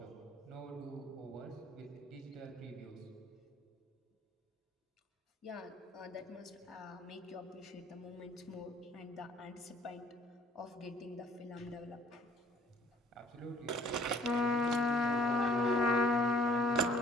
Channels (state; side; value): normal; both; correlation 0.56